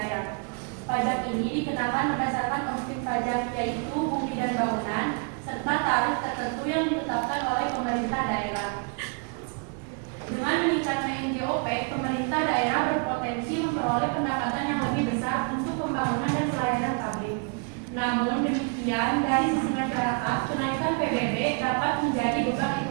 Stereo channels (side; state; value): left; quieter; 36.5 dB